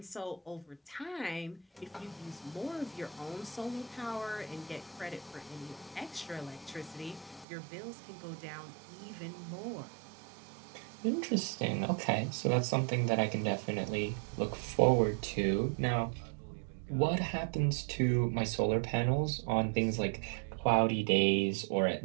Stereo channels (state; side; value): drops out; left; at 7.5 s